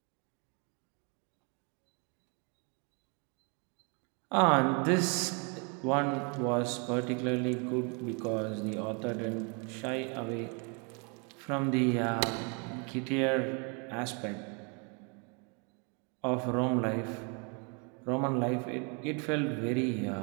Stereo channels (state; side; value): quieter; left; 35.0 dB